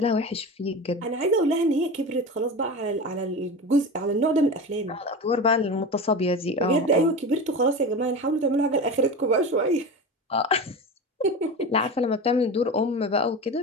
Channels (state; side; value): normal; both; correlation 0.27